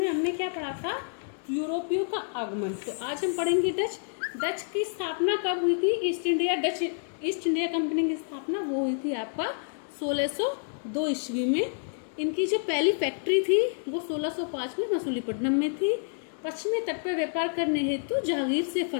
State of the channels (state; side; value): silent; right; digital silence